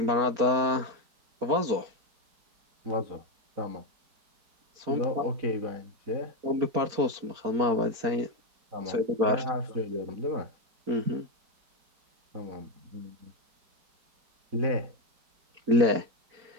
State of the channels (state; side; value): late; left; 4.4 ms